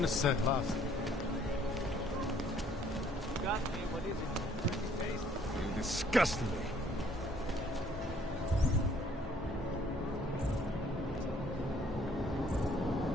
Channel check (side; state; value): both; normal; correlation 0.61